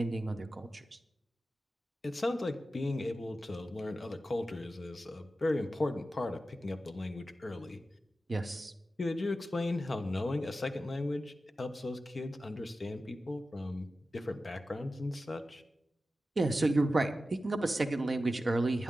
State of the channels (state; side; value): normal; both; correlation 0.93